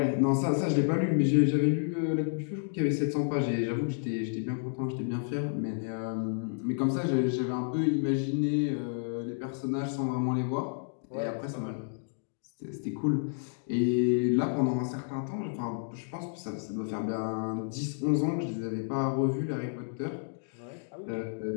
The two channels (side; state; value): right; silent; digital silence